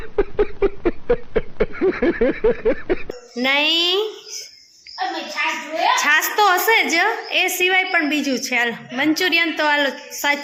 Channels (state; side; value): identical; both; correlation 1.00